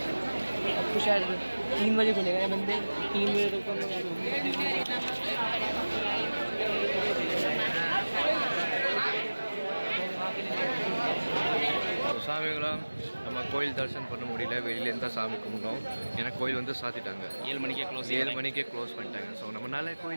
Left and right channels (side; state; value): both; inverted; correlation -1.00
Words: अब तो शायद 3 बजे खुलेगा ये बंदे, 3 बजे तक हम लोग சாமிங்களா நம்ம கோயில் தரிசனம் பண்ண முடியல, வெளியிலேருந்து தான் சாமி கும்பிட்டோம். ஏன்னா கோயில் வந்து சாத்திட்டாங்க, 7 மணிக்கே 7 மணிக்கே க்ளோஸ் பண்ணிட்டாங்க. ஸோ நம்மளால